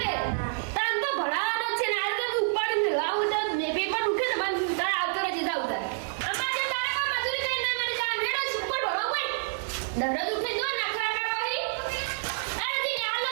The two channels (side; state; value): left; silent; 59 dB below the other